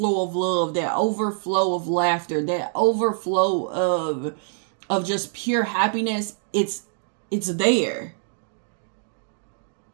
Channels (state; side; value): silent; left; digital silence